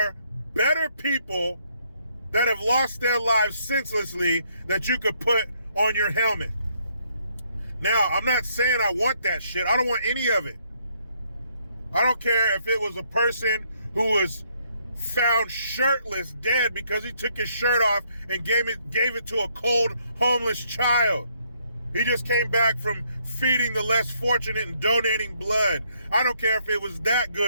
better people that have lost their lives senselessly that you could put on your helmet. Now, I'm not saying I want that shit. I don't want any of it. I don't care if it was a person who was found shirtless, dead, because he took his shirt off and gave it to a cold, homeless child. He just came back from feeding the less fortunate and donating blood. I don't care if it was that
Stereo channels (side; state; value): both; inverted; correlation -0.70